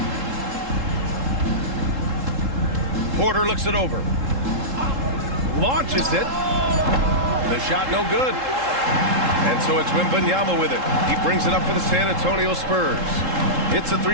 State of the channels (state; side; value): late; left; 3.7 ms